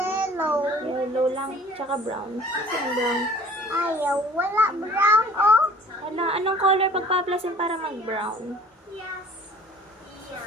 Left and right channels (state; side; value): normal; both; correlation 0.50